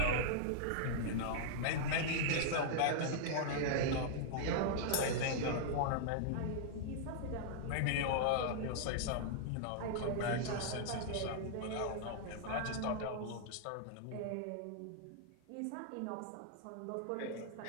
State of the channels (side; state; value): both; different; correlation -0.01